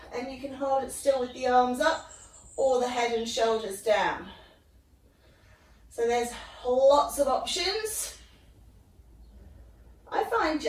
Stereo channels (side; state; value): both; identical; correlation 1.00